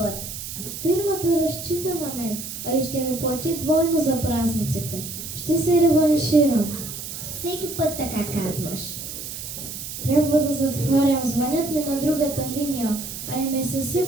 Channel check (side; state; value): right; noise; hiss, 8 dB below the sound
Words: Фирмата разчита на мен, а и ще ми плати двойно за празниците. Ще се реванширам. Всеки път така казваш. Трябва да затварям. Звънят ми на другата линия, а и ме